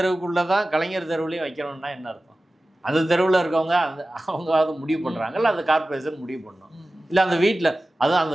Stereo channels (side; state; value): both; normal; correlation 0.96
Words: தான் கலைஞர் தெருவுலேயும் வைக்கணும்னா என்ன அர்த்தம்? அந்த தெருவில் இருக்கவங்க அவங்க அதை முடிவு பண்ணுறாங்க, இல்லை அந்த கார்பரேஷன் முடிவு பண்ணணும், இல்லை அந்த வீட்டில்